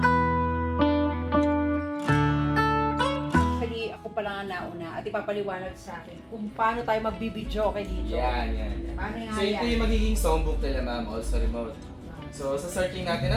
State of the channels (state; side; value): identical; both; correlation 1.00